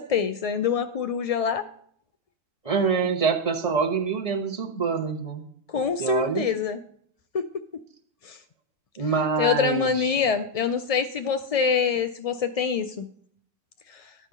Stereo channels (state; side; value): late; right; 1.7 ms